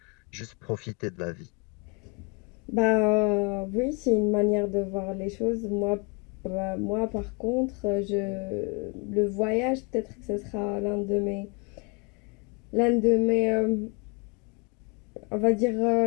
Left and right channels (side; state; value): right; quieter; 31.4 dB